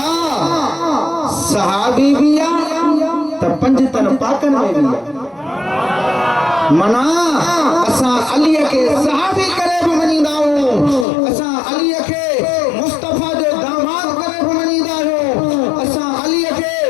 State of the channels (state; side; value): drops out; right; at 11.1 s